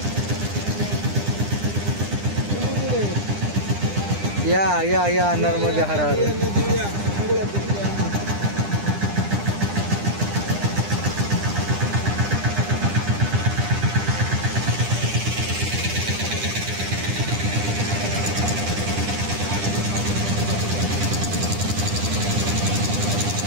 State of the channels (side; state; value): left; late; 9.9 ms